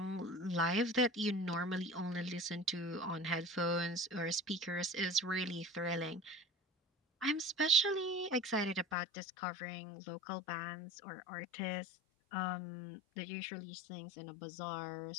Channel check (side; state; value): right; drops out; at 9.0 s